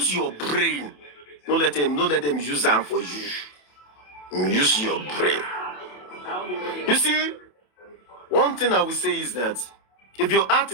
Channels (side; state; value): right; late; 27 ms